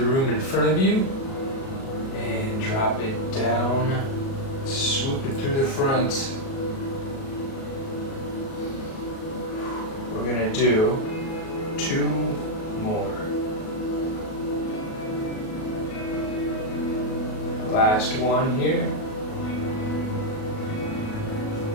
room in front of you, and drop it down. Swoop it through the front. We're gonna do 2 more. Last one here.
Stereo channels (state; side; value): late; right; 37 ms